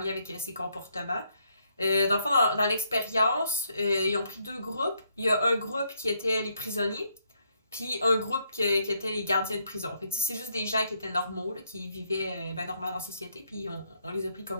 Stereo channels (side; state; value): both; inverted; correlation -0.74